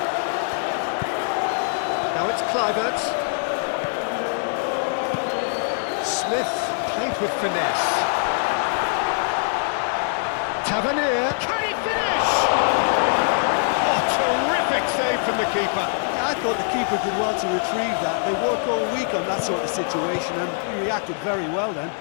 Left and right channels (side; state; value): right; silent; 56 dB below the other